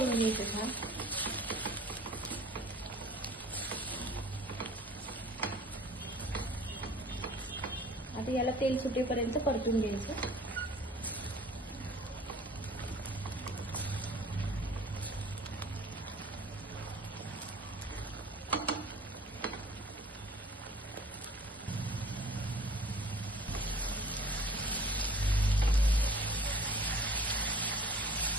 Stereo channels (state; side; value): normal; both; correlation 0.49